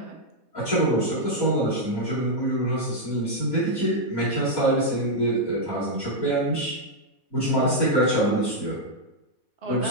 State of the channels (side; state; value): right; late; 4.1 ms